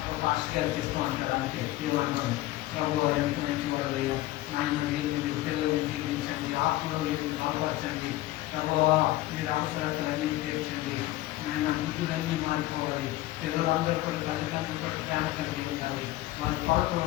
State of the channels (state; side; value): quieter; right; 16.8 dB